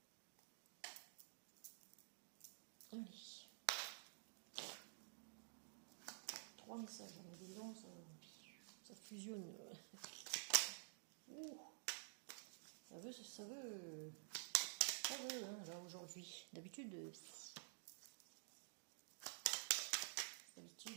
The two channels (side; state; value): left; silent; digital silence